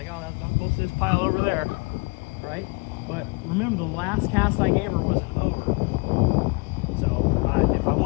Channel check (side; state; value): right; quieter; 29.8 dB